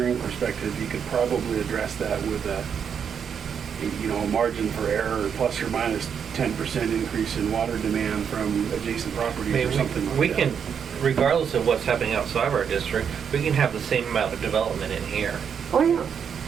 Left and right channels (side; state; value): left; quieter; 7.4 dB